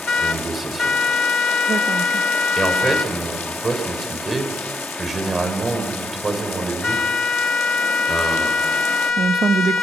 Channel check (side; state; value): both; normal; correlation 0.78